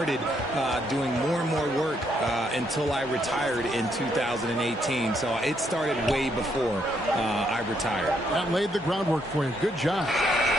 doing more and more work until I retired in 2018. So it started way before I retired. That laid the groundwork for you. Good job.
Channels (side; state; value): both; normal; correlation 0.74